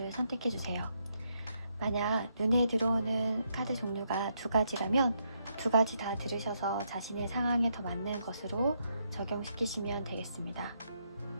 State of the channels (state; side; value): inverted; both; correlation -0.77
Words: 선택해주세요. 만약 눈에 들어오는 카드 종류가 두 가지라면 두 가지 다 들으셔서 자신의 상황에 더 맞는 것으로 적용시키시면 되겠습니다.